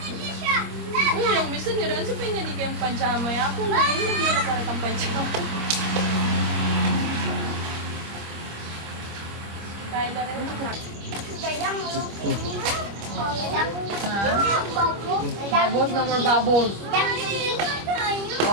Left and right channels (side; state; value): left; late; 25 ms